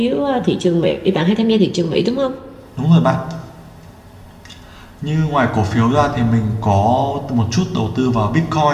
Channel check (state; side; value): identical; both; correlation 1.00